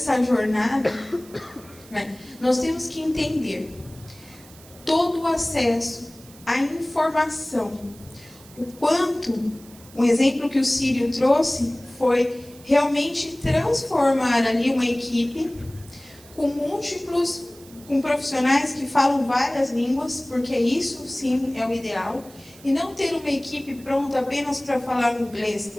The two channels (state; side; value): noise; right; hiss, 22 dB below the sound